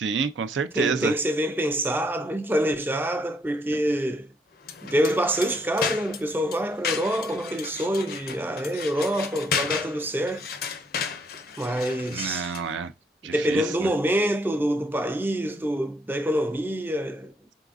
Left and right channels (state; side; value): normal; both; correlation 0.70